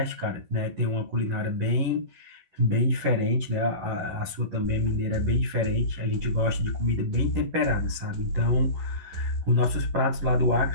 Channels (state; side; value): late; left; 11 ms